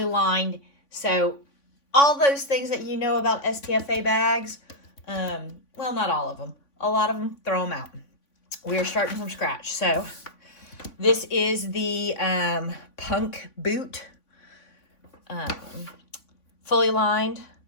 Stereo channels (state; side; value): late; right; 3.5 ms